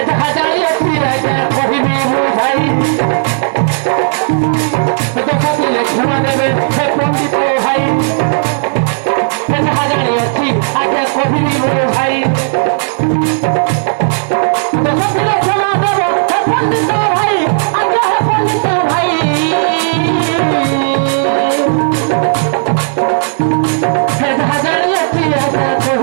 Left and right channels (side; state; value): left; silent; digital silence